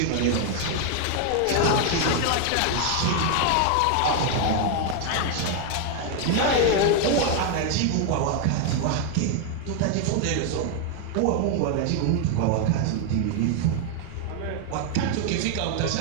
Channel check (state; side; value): different; both; correlation 0.01